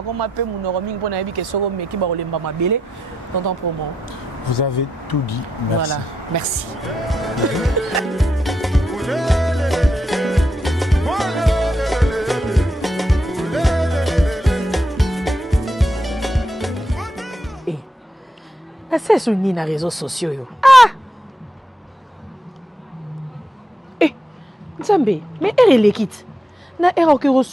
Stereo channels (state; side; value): normal; both; correlation 0.83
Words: koma pe mon roming pour n'abi que soro meki ba olemba mabele. Tonton Promo. Vous avez tout dit. Merci. Voilà, merci. C'est sur les réseaux sociaux. Ah! Eh! Nzambe, mais elle est l'équipe. Na era que